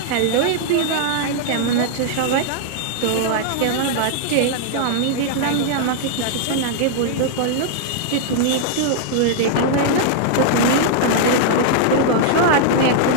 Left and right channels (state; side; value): different; both; correlation -0.01